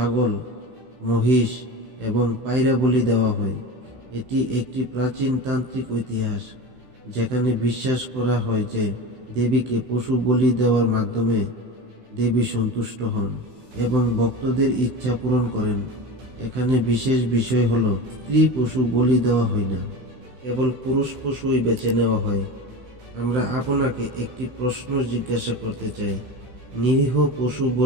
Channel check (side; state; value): left; late; 16 ms